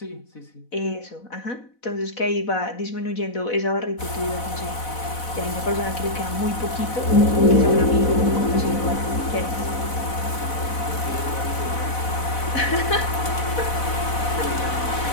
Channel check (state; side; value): late; right; 4.1 ms